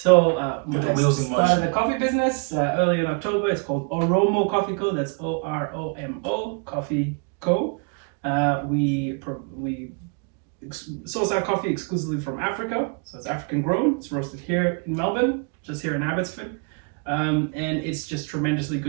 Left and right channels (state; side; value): quieter; left; 37.3 dB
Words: Put the I wheels in started motion. a coffee business early in October. It's called Oromo Coffee Co. That's Oromo Coffee Co. We source our coffee exclusively from Africa, so it's African grown. It's roasted here in Melbourne, just here in Abbotsford, and it's just tremendously